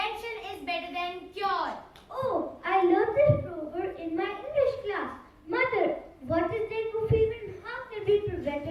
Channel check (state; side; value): identical; both; correlation 1.00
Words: is better than cure. Oh, I learned this proverb in my English class. Mother, what is dengue fever and how can we prevent